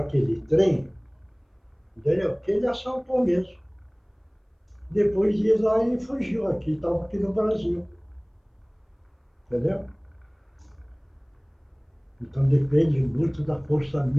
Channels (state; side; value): identical; both; correlation 1.00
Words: aquele trem, entendeu? Que ele assaltou mesmo. Depois de ir lá, ele fugiu aqui, estava aqui no Brasil. Entendeu? Então depende muito da força